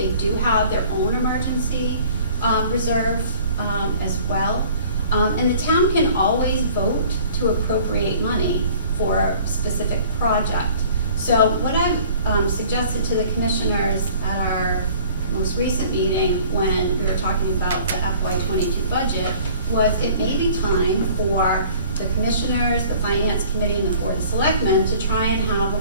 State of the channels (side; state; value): both; inverted; correlation -0.50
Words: do have their own emergency reserve as well. And the town can always vote to appropriate money for a specific project. So what I've suggested to the commissioners at our most recent meeting, when we were talking about the FY22 budget, was it may be time for the commissioners, the finance committee, and the board of selectmen to try and have